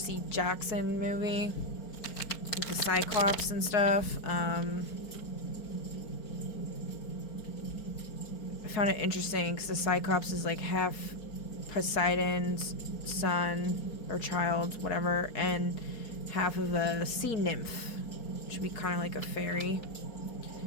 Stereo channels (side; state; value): right; late; 4.3 ms